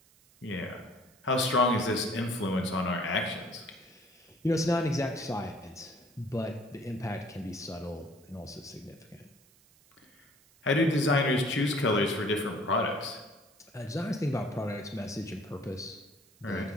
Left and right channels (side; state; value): right; noise; hiss, 29 dB below the sound